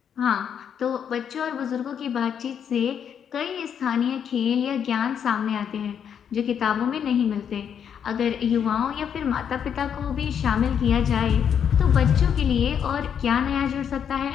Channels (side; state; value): right; quieter; 8.1 dB